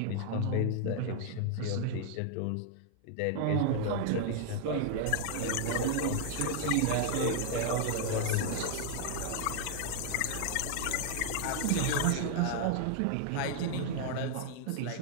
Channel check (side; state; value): both; different; correlation 0.00